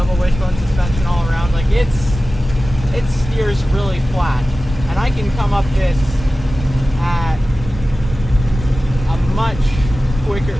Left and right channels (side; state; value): both; normal; correlation 0.95